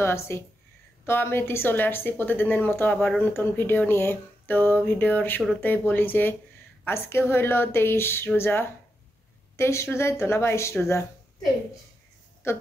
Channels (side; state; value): both; normal; correlation 0.86